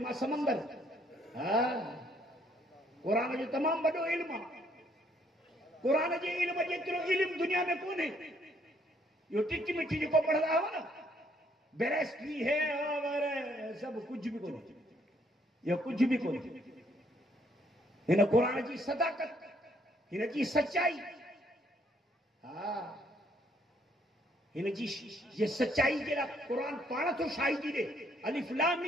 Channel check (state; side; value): normal; both; correlation 0.67